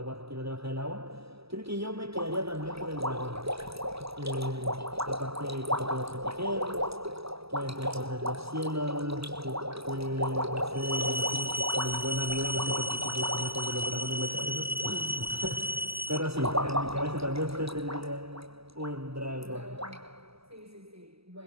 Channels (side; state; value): left; late; 0.77 ms